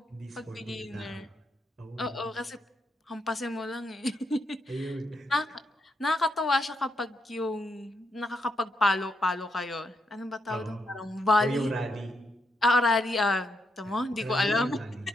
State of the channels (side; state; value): both; normal; correlation 0.80